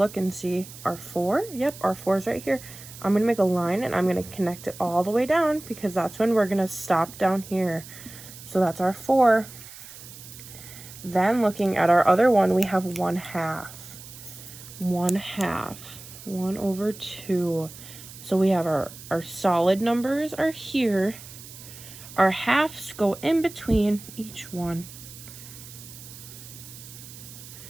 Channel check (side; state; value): right; noise; hiss, 16 dB below the sound